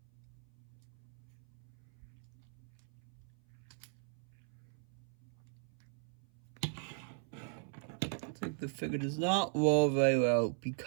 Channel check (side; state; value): left; silent; 52 dB below the other